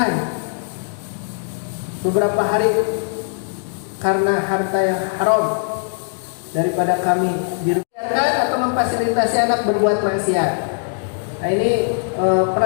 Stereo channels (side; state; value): right; silent; digital silence